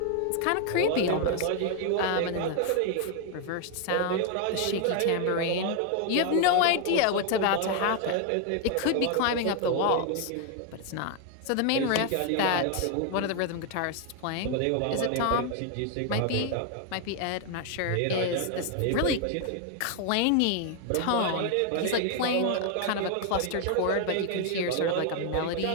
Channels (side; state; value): both; different; correlation 0.01